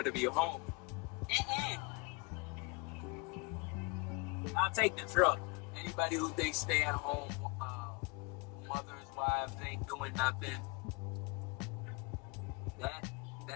to be home. I'll take the truck. Anybody who thinks stay at home, mothers, wives, ain't doing nothing.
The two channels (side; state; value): right; quieter; 28.3 dB